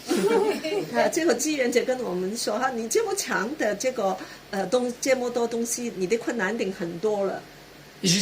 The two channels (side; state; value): both; identical; correlation 1.00